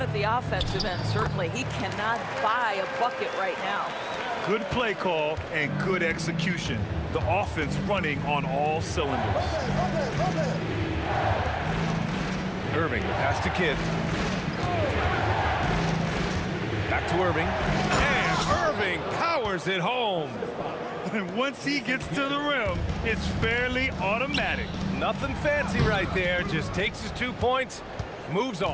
at the offensive end, certainly. He cannot buy a bucket right now. Good play call and good execution. The offense running on all cylinders. Irving, the pass to Kidd. Back to Irving. And Irving powers it home. And once he gets to the rim, it's fairly automatic. Nothing fancy right there. Just takes his 2 points, moves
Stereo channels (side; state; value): both; identical; correlation 1.00